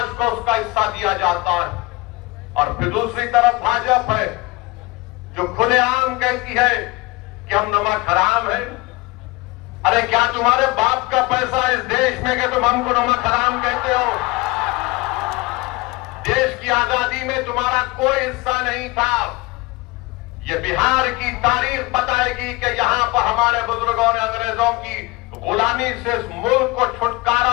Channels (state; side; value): quieter; right; 23.2 dB